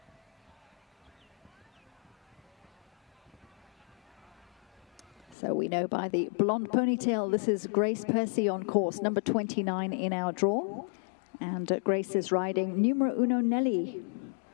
So we know by the blonde ponytail, this is Grace Percy on course, number 29 in our draw. And Grace is riding numero uno Nelly.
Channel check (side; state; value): right; drops out; at 5.4 s